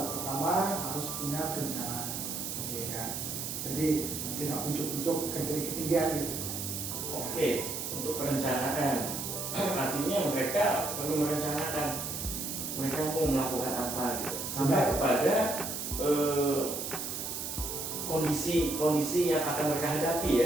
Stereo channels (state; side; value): noise; right; hiss, 4 dB below the sound